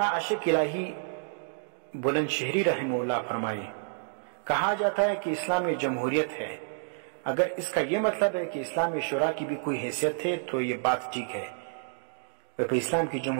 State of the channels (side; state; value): left; silent; digital silence